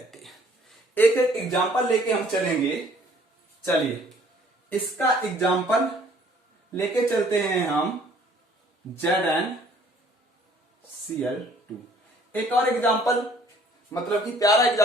एक एक एग्जाम्पल लेके हम चलेंगे। चलिए, इसका एग्जाम्पल लेके चलते हैं हम, ZnCl2। एक और एग्जाम्पल, मतलब कि प्यारा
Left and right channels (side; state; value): both; normal; correlation 0.58